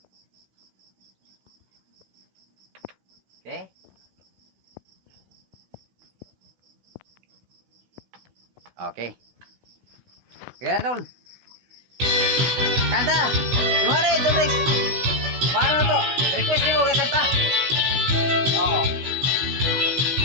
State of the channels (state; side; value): late; left; 16 ms